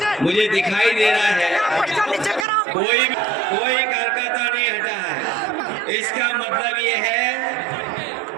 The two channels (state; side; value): drops out; left; at 2.5 s